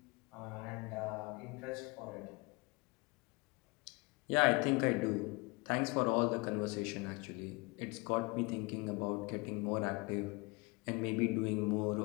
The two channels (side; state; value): right; quieter; 27.5 dB